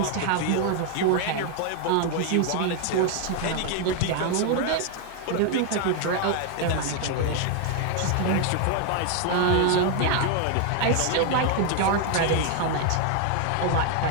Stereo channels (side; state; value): both; different; correlation 0.01